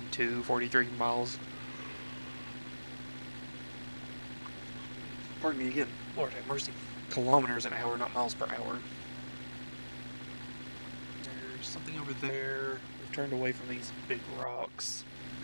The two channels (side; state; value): both; inverted; correlation -1.00